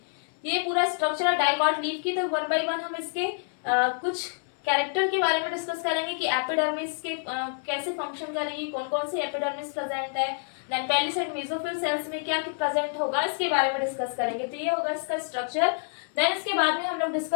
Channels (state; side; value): silent; right; 60 dB below the other